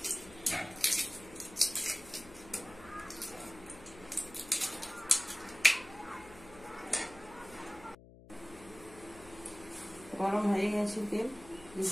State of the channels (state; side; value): noise; left; hum, 19 dB below the sound